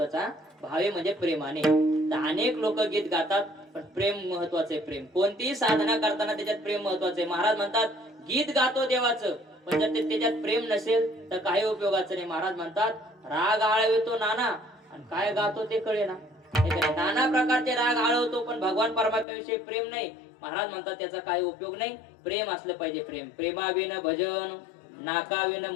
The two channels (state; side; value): drops out; right; at 19.2 s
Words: भावे म्हणजे प्रेमाने. तर अनेक लोक गीत गातात पण प्रेम महत्वाचे. प्रेम कोणतीही साधना करताना त्याच्यात प्रेम महत्वाचे. महाराज म्हणतात गीत गातो देवाचं पण जर त्याच्यात प्रेम नसेल तर काही उपयोगाचं नाही. महाराज म्हणतात राग आळवितो नाना आणि काय गातो ते कळेना. नाना प्रकारचे राग आळवतो पण भगवान परमात्म्याविषयी प्रेम नाही. महाराज म्हणतात त्याचा काही उपयोग नाही. प्रेम असलं पाहिजे. प्रेम. प्रेमाविन भजन नाकाविन